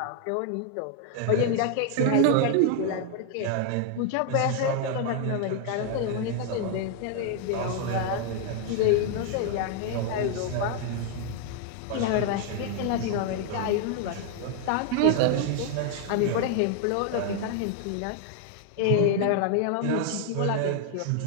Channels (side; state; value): both; different; correlation 0.00